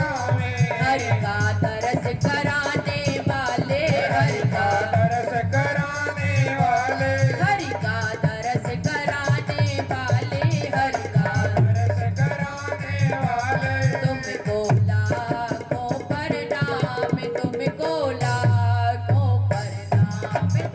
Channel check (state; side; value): identical; both; correlation 1.00